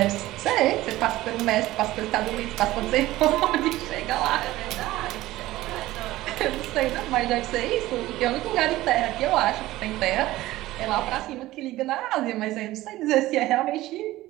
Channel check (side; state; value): left; quieter; 16.7 dB